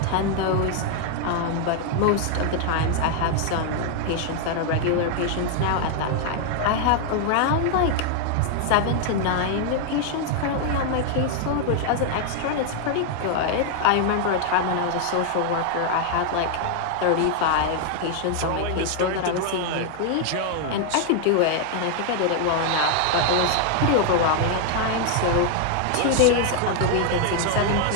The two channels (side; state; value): both; different; correlation 0.00